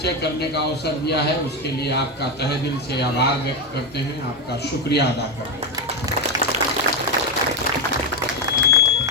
करने का अवसर दिया है। उसके लिए आपका तहे दिल से आभार व्यक्त करते हैं, आपका शुक्रिया अदा करते हैं।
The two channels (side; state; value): both; normal; correlation 0.09